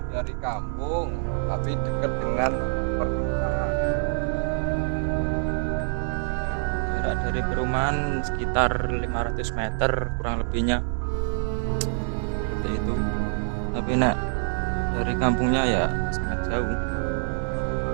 dari kampung, tapi dekat dengan perkotaan. Jarak dari perumahan sekitar 500 meter kurang lebihnya, seperti itu. Tapi nak dari kampungnya ya sangat jauh.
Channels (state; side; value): silent; left; 61 dB below the other